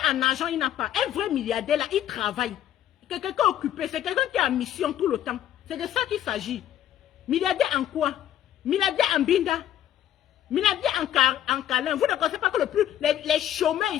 en argent, il n'a pas. Un vrai milliardaire là, il travaille. C'est quelqu'un occupé, c'est quelqu'un qui est en mission tout le temps. C'est de ça qu'il s'agit. Milliardaire en quoi? Milliardaire en binda. Milliardaire en câlin. Vous ne connaissez pas que les chômeurs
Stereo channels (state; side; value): quieter; right; 11.4 dB